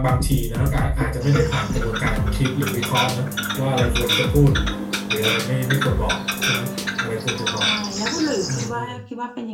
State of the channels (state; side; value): identical; both; correlation 1.00